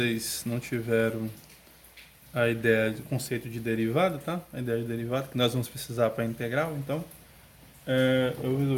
não tiveram a ideia do conceito de derivada, tá? A ideia de derivada que nós vamos precisar para integral, então eu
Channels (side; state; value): both; identical; correlation 1.00